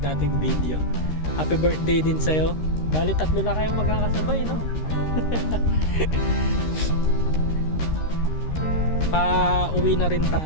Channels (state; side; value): late; right; 13 ms